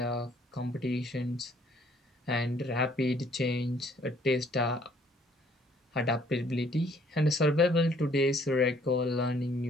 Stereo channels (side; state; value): both; normal; correlation 0.61